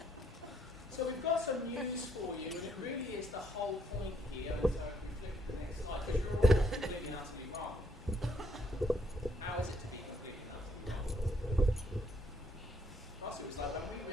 So we've got some news for you, and it really is the whole point here. And so if we flip to the next slide, because you're all completely and utterly wrong. How is it to be completely and utterly wrong? Also, it was like when we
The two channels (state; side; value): normal; both; correlation 0.70